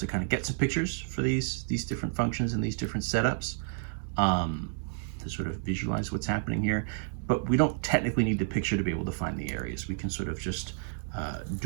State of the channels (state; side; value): silent; left; 58 dB below the other